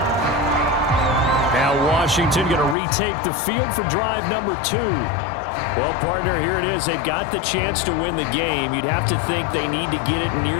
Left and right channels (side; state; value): right; drops out; at 2.8 s